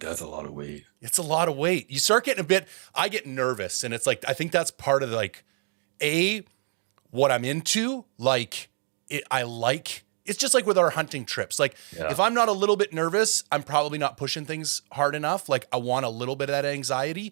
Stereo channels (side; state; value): left; silent; 56 dB below the other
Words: a lot of weight. It's a lot of weight. You start getting I get nervous, and it's like I think that's part of like what I'm into. Like it's just like with our hunting trips. Like Yeah. if I'm not a little bit nervous, I'm probably not pushing things hard enough. Like I want a little bit of that